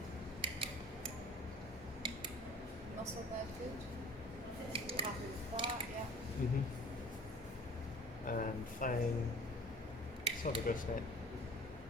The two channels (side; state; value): both; normal; correlation 0.46